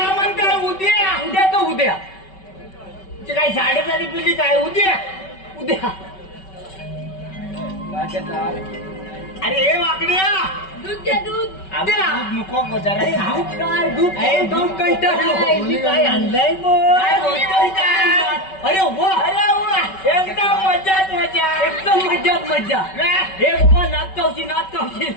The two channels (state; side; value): late; right; 5.3 ms